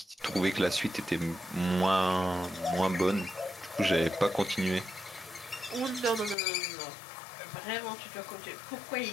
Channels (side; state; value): right; drops out; at 6.4 s